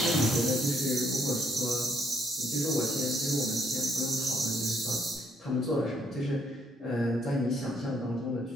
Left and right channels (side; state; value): both; normal; correlation 0.70